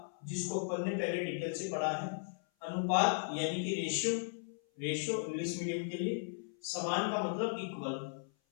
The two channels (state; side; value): silent; right; 53 dB below the other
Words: जिसको अपन ने पहले डिटेल से पढ़ा है, अनुपात यानी कि रेशियो, रेशियो इंग्लिश मीडियम के लिए। समान का मतलब इक्वल,